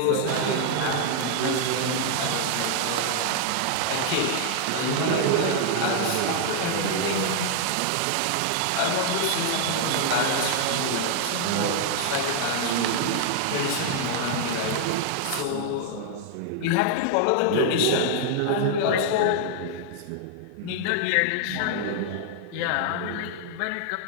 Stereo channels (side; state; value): both; different; correlation 0.00